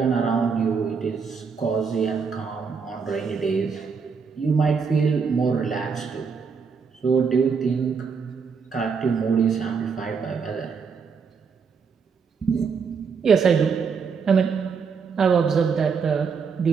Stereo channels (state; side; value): quieter; left; 5.7 dB